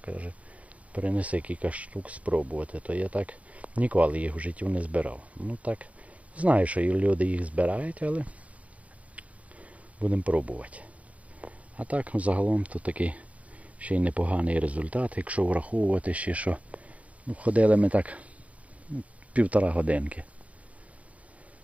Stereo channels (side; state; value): left; late; 0.066 ms